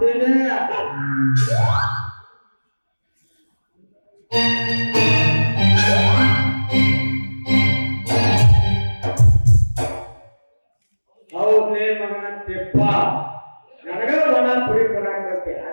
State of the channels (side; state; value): both; inverted; correlation -1.00